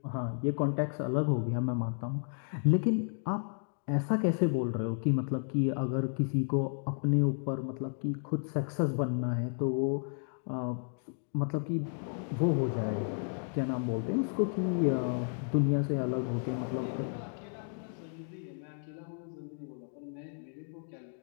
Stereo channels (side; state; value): right; silent; 56 dB below the other